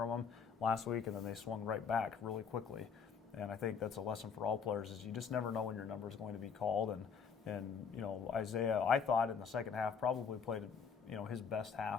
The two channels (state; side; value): quieter; right; 6.3 dB